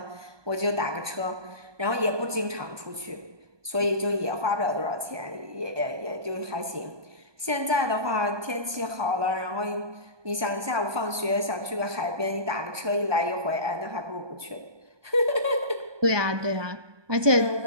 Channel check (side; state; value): left; late; 1.2 ms